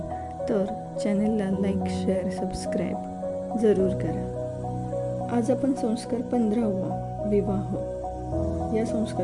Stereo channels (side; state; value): both; identical; correlation 1.00